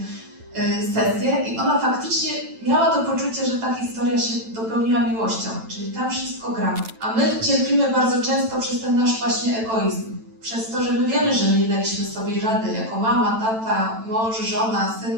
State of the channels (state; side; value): late; left; 9.0 ms